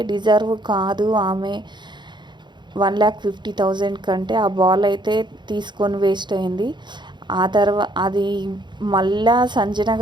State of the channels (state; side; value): late; left; 0.22 ms